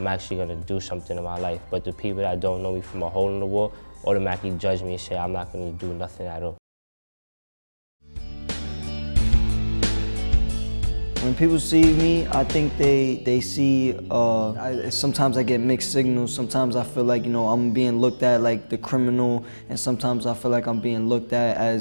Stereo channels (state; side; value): inverted; both; correlation -1.00